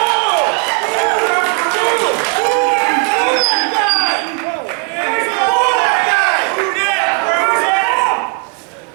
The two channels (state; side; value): quieter; left; 37.1 dB